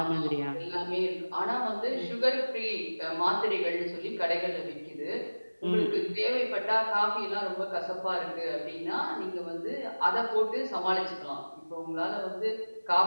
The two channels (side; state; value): both; inverted; correlation -1.00